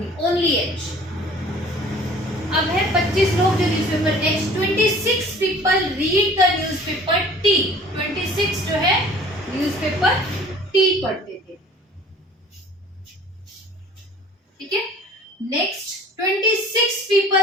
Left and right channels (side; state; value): both; normal; correlation 0.49